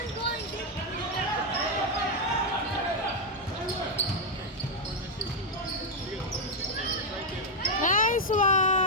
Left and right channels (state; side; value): normal; both; correlation 0.00